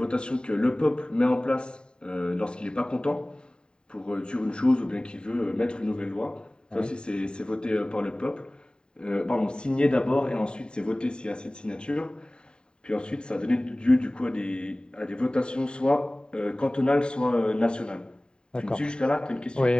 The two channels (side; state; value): right; late; 0.049 ms